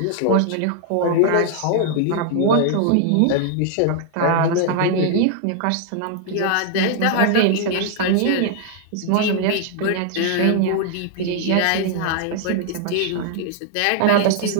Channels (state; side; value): different; both; correlation 0.00